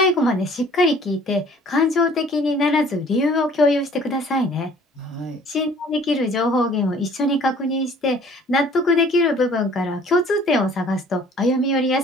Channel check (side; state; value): both; normal; correlation 0.53